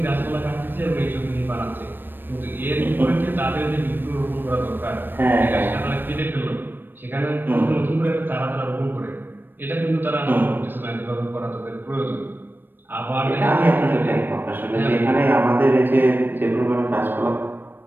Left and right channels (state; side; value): late; left; 0.095 ms